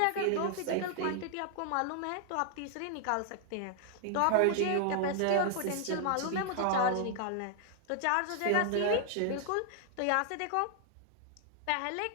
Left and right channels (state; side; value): different; both; correlation 0.00